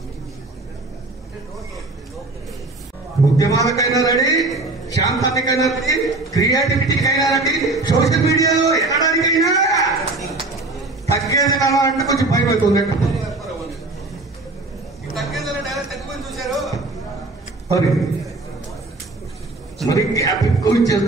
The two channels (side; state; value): left; quieter; 3.1 dB